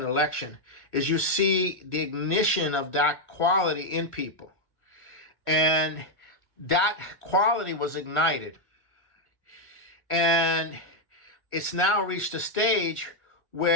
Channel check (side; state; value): right; late; 1.5 ms